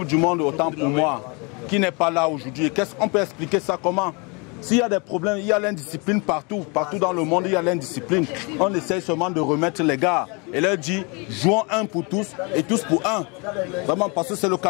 du Monde, autant pour moi, qui n'est pas là aujourd'hui. Qu'est-ce qu'on peut expliquer ça comment? S'il y a des problèmes, il y a l'indiscipline partout. Partout dans le monde, il y a l'indiscipline. On essaie seulement de remettre les gars et leur dire jouons un pour tous et tous pour un. Vraiment, parce que c'est le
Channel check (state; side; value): quieter; right; 30.8 dB